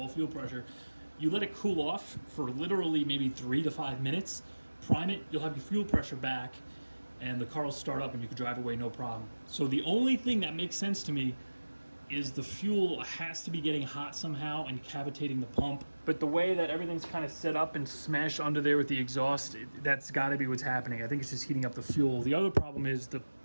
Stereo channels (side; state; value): both; inverted; correlation -1.00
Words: fuel pressure. You let it cool off for literally maybe 3 to 5 minutes, prime it, you'll have your fuel pressure back, and the car will start up and you can drive away no problem. So the only thing that makes sense to me is the fuel has to be getting hot somehow and cavitating the pump. But the way that everything's kind of set up and smashed under there with the exhaust, that's got to be what's happening. I think it's just heating up the fuel. The other problem is the